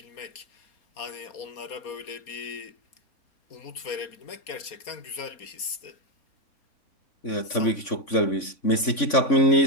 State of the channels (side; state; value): right; late; 3.5 ms